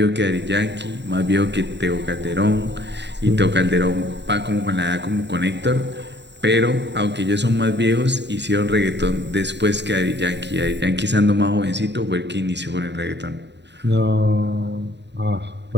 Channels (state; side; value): late; left; 0.51 ms